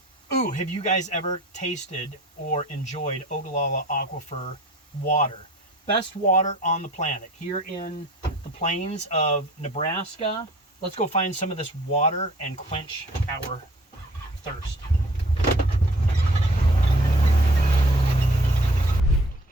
Ooh, have you guys ever tasted or enjoyed Ogallala Aquifer water? Best water on the planet. Here in the plains of Nebraska, let's go find some of this water and quench our thirst.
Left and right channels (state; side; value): normal; both; correlation 0.52